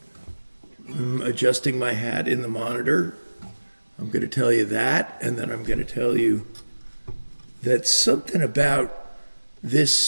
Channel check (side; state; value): both; inverted; correlation -1.00